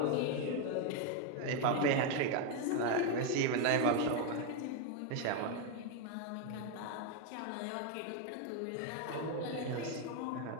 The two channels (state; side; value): different; both; correlation 0.01